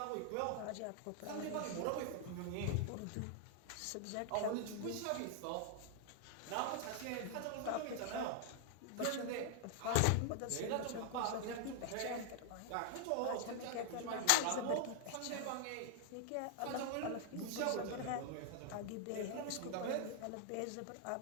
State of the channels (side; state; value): both; different; correlation 0.00